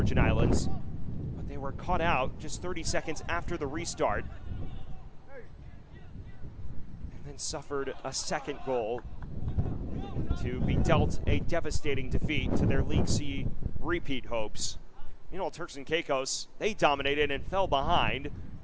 Islands, but they They were caught out just 30 seconds after the restart, and then suffered a second goal to be dealt a devastating defeat to their League C repeat hopes. Meanwhile, Turks and Caicos, they dominated and fell behind,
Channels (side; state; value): both; identical; correlation 1.00